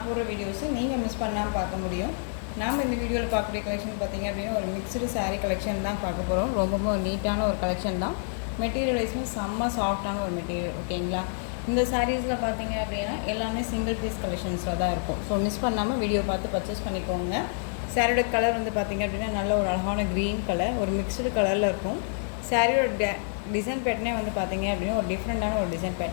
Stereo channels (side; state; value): right; silent; digital silence